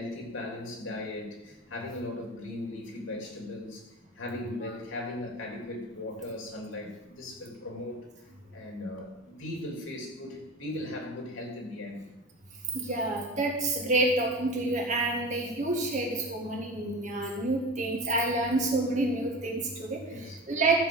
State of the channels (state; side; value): normal; both; correlation 0.31